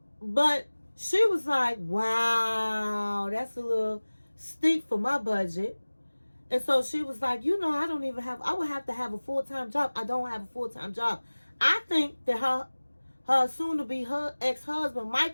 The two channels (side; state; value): both; inverted; correlation -1.00